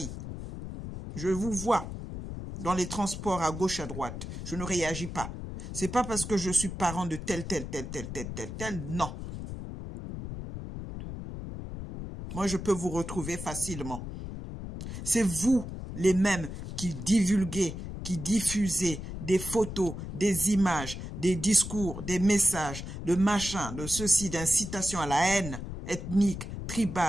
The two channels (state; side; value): noise; left; rumble, 8 dB below the sound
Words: Je vous vois dans les transports à gauche, à droite. Je ne réagis pas. C'est pas parce que je suis parent de tel, non. Moi, je peux vous retrouver facilement. C'est vous, les mêmes, qui divulguez, qui diffusez des photos, des images, des discours, des messages, de machin, de ceci, d'incitation à la haine ethnique,